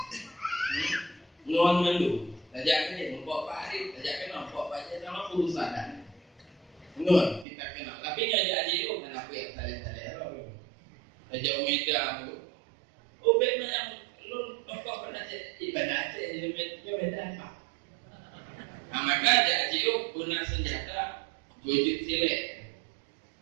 Nuan mendu, tajak kena membawa parit, tajak kena membawa baca sama urusan. Nuan kita kenal, tapi ngajak jauh kenapa ya tali-tali. Tajak Omega tu. Ubek macam lu tokoh pernah ibadah Aceh beda apa? Maka jadi guna senjata wujud silet.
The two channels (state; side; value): drops out; left; at 7.5 s